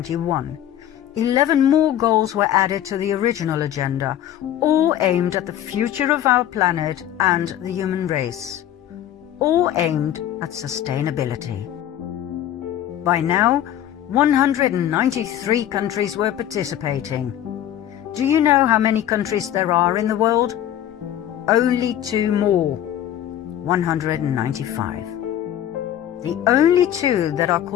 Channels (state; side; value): quieter; right; 11.4 dB